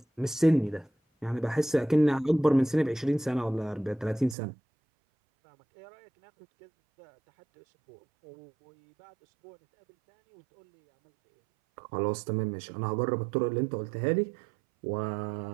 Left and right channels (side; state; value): left; drops out; at 4.4 s